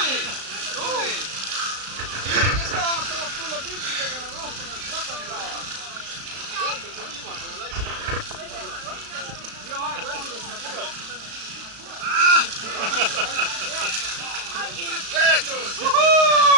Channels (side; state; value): left; late; 35 ms